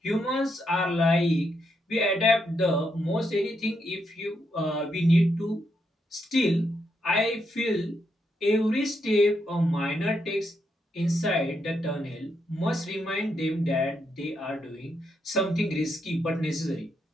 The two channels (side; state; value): both; normal; correlation 0.80